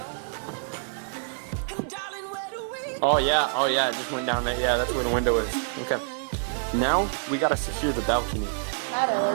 Oh yeah, it just went down there. Yeah, that's where the window is. Okay. Now, we gotta secure the balcony. That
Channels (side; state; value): left; silent; digital silence